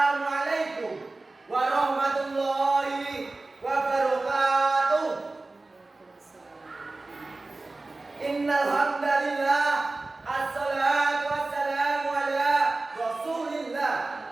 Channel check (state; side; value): quieter; left; 3.2 dB